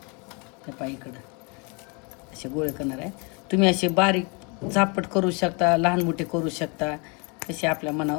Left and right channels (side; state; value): right; quieter; 32.1 dB